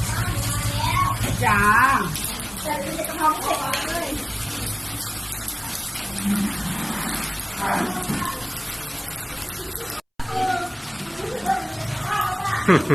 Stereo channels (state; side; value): identical; both; correlation 1.00